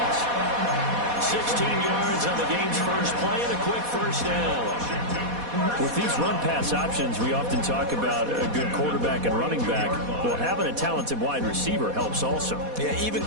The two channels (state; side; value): late; left; 4.1 ms